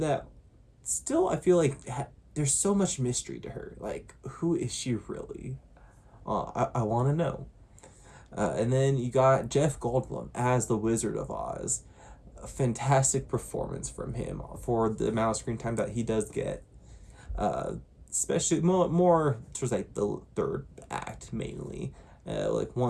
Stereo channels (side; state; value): both; identical; correlation 1.00